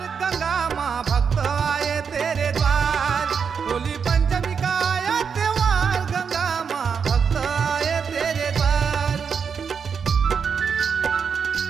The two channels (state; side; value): quieter; left; 6.4 dB